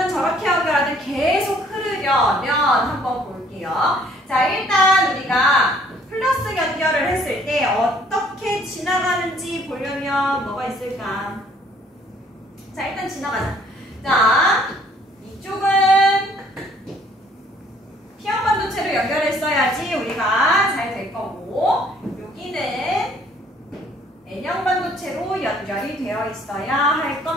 저렇게 연결하든 계속 흐르려면 한번 볼게요. 자, 일단 우리가 플러스 연결을 했을 때 어떻게 지나가는지 보려면 뭐가 있을까? 자, 일단 지나가자. 자, 이쪽은 P형 반도체로 연결했어야지 우리가 잘 될 거고, 여기는 N형 반도체로 연결이 되어 있어야 할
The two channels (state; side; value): normal; both; correlation 0.60